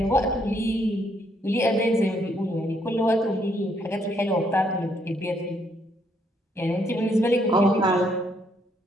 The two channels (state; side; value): normal; both; correlation 0.71